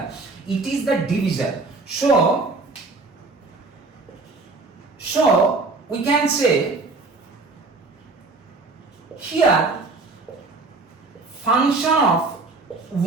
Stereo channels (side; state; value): left; quieter; 3.6 dB